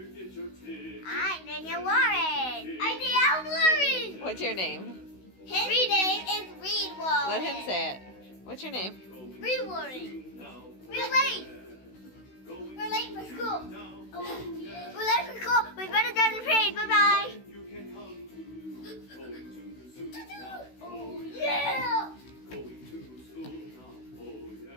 get your ticket. I'm Daniel Warren. I'm Daniel Warren. What's your name? His name is Reed Warren. Let him say it. What's your name? Reed Warren. We're late. We're late for school. We're late for school. We better get the parade. Bye bye. You can come to going to the zoo now, Oh yeah. going to school now, oh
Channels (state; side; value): late; right; 16 ms